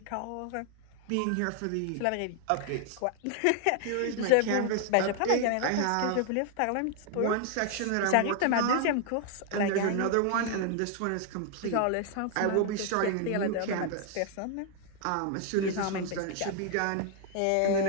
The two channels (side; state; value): both; different; correlation 0.00